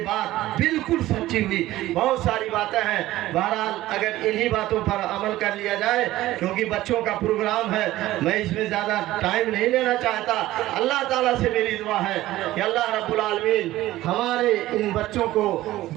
बात बिल्कुल सच्ची हुई। बहुत सारी बातें हैं, बहरहाल अगर इन्हीं बातों पर अमल कर लिया जाए, क्योंकि बच्चों का प्रोग्राम है, मैं इसमें ज़्यादा टाइम नहीं लेना चाहता। अल्लाह ताला से मेरी दुआ है कि अल्लाह रब्बुल आलमीन हमारे इन बच्चों को,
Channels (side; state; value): left; quieter; 15.9 dB